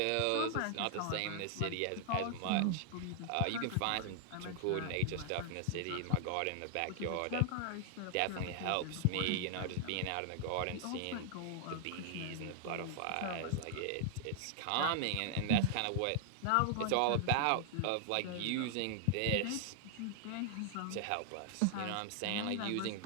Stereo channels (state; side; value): different; both; correlation -0.01